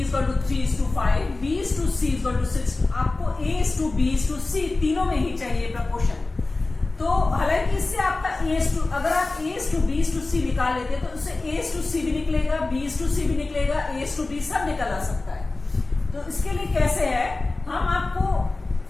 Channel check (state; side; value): quieter; right; 3.3 dB